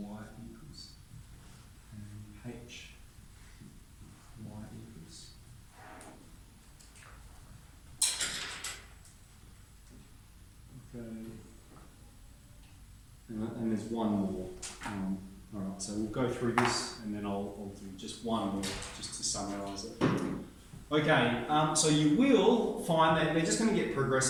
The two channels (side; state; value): both; identical; correlation 1.00